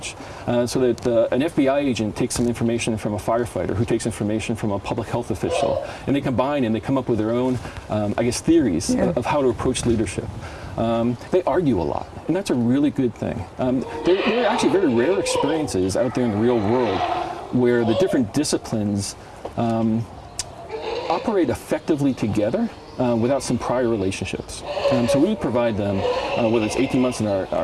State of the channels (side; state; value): both; identical; correlation 1.00